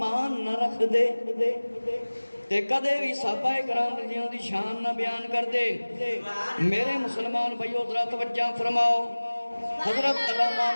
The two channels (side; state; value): both; inverted; correlation -1.00